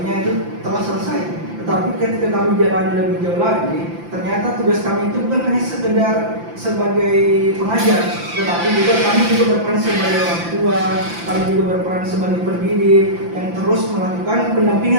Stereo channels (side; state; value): left; late; 5.9 ms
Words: itu telah selesai. Tetapi ketika kami jalan lebih jauh lagi, ternyata tugas kami itu bukan hanya sekedar sebagai pengajar, tetapi juga kami juga berperan sebagai orang tua, kami juga berperan sebagai pendidik yang terus melakukan